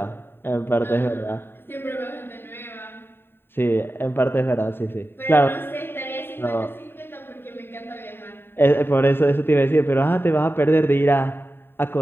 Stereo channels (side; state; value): right; late; 0.11 ms